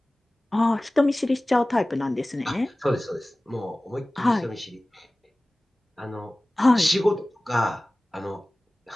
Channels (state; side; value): normal; both; correlation 0.98